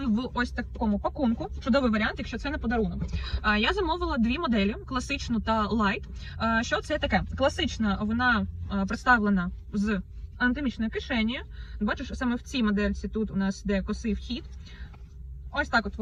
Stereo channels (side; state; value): both; identical; correlation 1.00